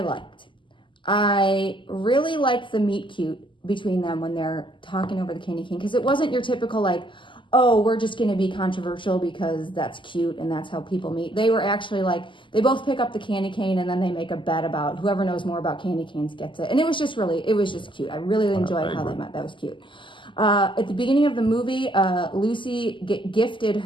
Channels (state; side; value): late; right; 0.24 ms